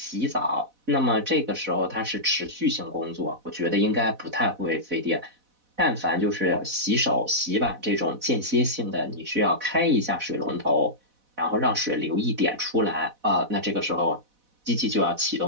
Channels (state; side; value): late; left; 4.1 ms